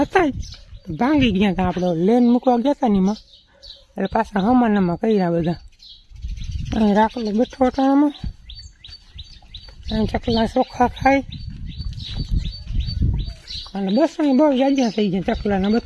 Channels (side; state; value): both; identical; correlation 1.00